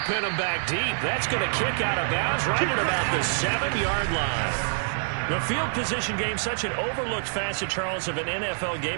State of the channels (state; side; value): silent; left; digital silence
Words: pin them back deep. That's going to kick out of bounds right at about the 7-yard line. The field position game, such an overlooked facet, Charles, of an NFL